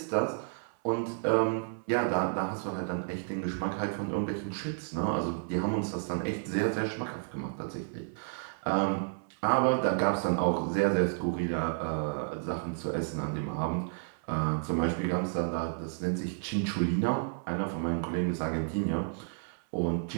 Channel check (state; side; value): silent; left; 57 dB below the other